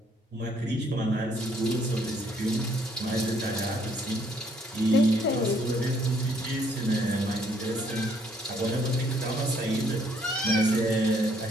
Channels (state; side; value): normal; both; correlation 0.66